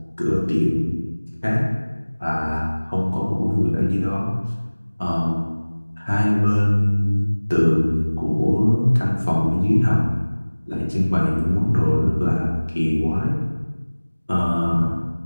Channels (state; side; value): inverted; both; correlation -1.00